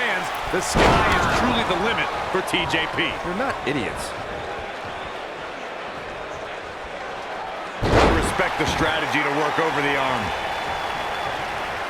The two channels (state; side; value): identical; both; correlation 1.00